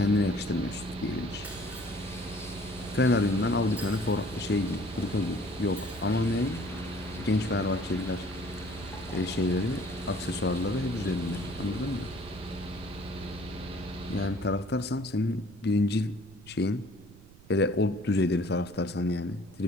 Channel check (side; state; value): right; noise; rumble, 21 dB below the sound